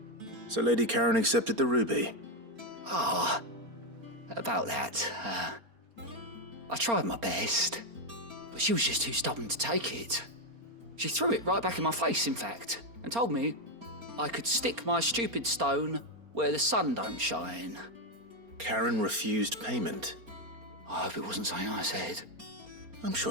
So Lady Karen accepted the ruby. Ah, about that. I tried my best, but she was just too stubborn to take it. She threw it right back in my face, in fact, and told me I could stick my stupid stone where the sun don't shine. Karen refused payment. I hope it wasn't something I said. I'm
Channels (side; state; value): left; late; 4.3 ms